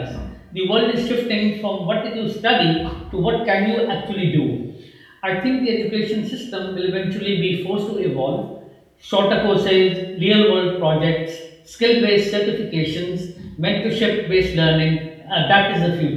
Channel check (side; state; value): both; identical; correlation 1.00